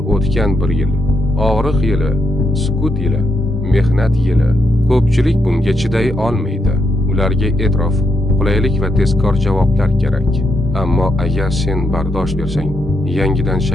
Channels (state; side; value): normal; both; correlation 0.80